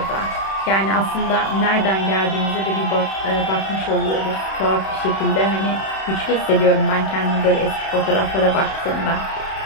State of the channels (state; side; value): late; right; 31 ms